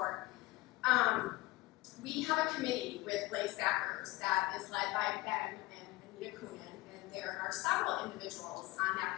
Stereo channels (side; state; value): right; quieter; 20.3 dB